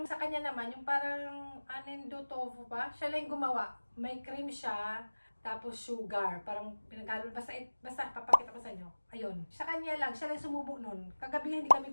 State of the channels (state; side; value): inverted; both; correlation -1.00